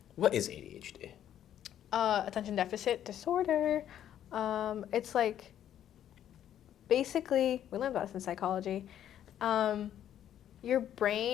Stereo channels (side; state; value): right; quieter; 10.7 dB